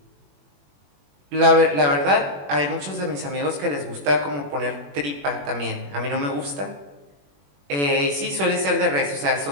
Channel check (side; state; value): left; late; 21 ms